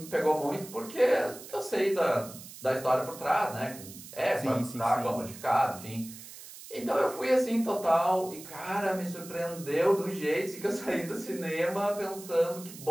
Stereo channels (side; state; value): right; noise; hiss, 15 dB below the sound